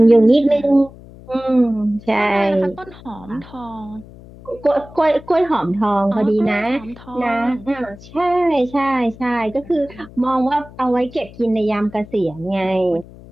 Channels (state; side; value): noise; left; hum, 20 dB below the sound